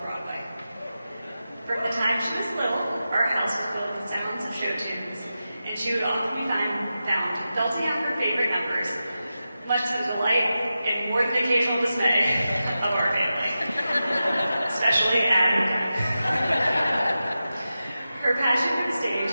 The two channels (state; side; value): inverted; both; correlation -0.92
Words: Broadway. From the time she was little, our house was filled with sounds of show tunes, and she would often be found belting out her favorite numbers, much to the delight and more than occasional dismay of our family, especially Adam. Her passion for the stage